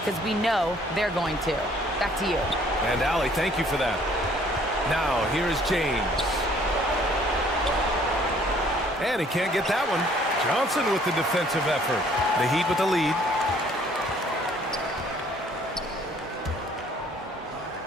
we know they're going to." Back to you. And Allie, thank you for that. Now, here is James. And he can't get that one. Johnson with the defensive effort. The Heat with the lead.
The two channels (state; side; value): normal; both; correlation 0.59